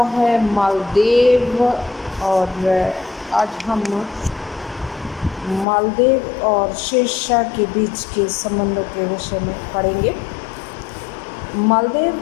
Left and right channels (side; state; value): right; drops out; at 5.7 s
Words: है मालदीव। और आज हम मालदीव और शेरशाह के बीच के संबंधों के विषय में पढ़ेंगे।